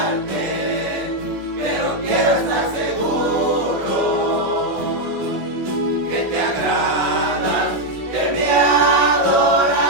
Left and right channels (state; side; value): late; left; 17 ms